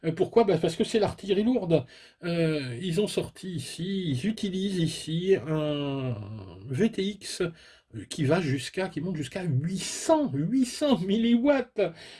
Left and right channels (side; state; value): both; identical; correlation 1.00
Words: Pourquoi? Bah, parce que c'est l'artillerie lourde. Ils ont sorti ici, ils utilisent ici un VTX qui monte jusqu'à 800 milliwatts.